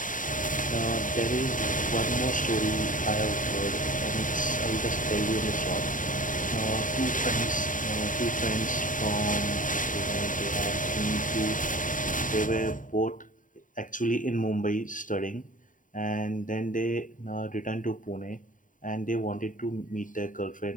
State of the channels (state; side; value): late; right; 0.38 ms